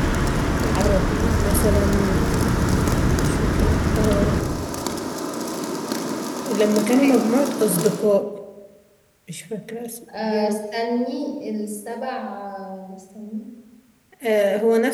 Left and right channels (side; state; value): both; identical; correlation 1.00